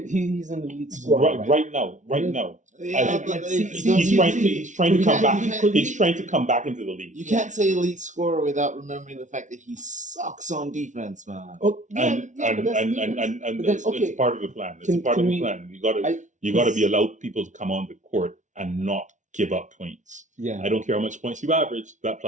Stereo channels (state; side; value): late; left; 0.36 ms